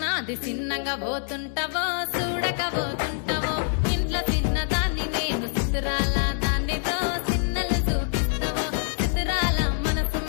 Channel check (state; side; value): silent; right; 57 dB below the other